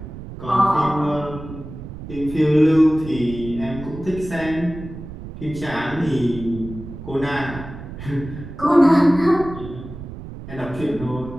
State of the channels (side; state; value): right; noise; rumble, 12 dB below the sound